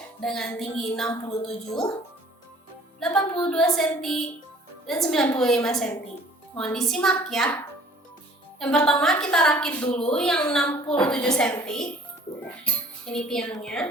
dengan tinggi 67, 82 cm, dan 95 cm. Mohon disimak ya. Yang pertama kita rakit dulu yang 67 cm. Ini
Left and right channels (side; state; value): both; normal; correlation 0.53